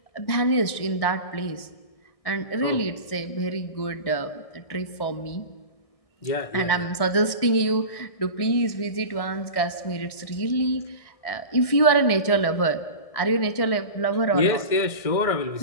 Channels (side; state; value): right; late; 1.6 ms